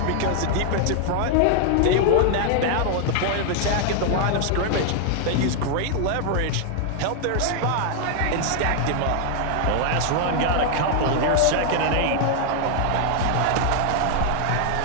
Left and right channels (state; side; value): different; both; correlation 0.00